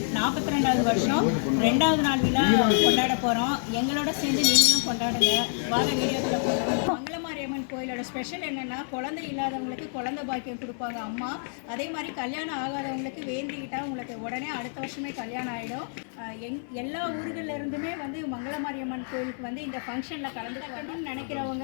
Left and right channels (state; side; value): silent; right; digital silence